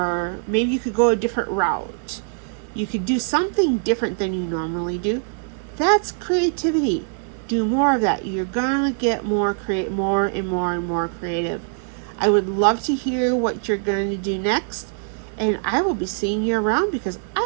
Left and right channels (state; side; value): silent; left; digital silence